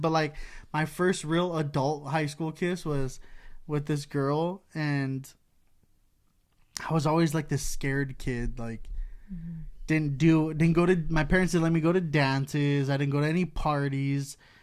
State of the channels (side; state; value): both; identical; correlation 1.00